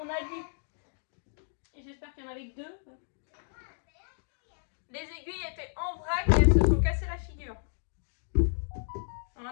a vu. Et j'espère qu'il y en avait que deux. Les aiguilles étaient en vrac et elles se sont cassées la figure.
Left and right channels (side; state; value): right; silent; digital silence